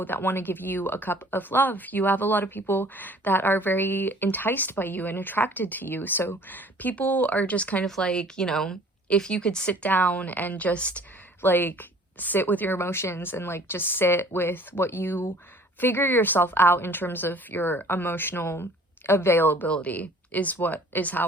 that want to give you a cup of love. You have a lot of people that are very enticed by you and attracted to you. So people are just kind of like, you know, if you could sit down and just like sit with your emotions and like just sit with what you figure yourself out in terms of your emotional availability is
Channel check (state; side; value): normal; both; correlation 0.51